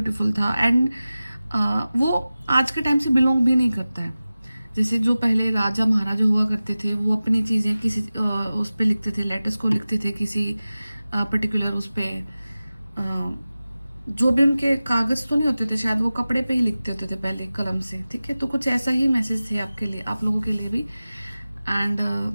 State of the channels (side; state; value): both; inverted; correlation -0.96